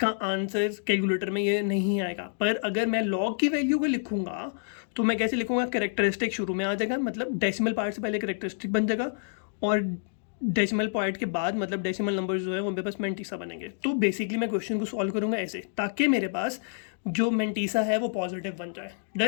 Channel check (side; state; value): right; silent; digital silence